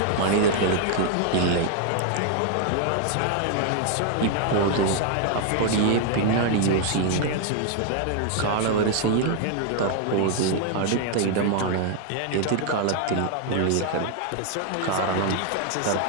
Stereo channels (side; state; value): both; different; correlation 0.00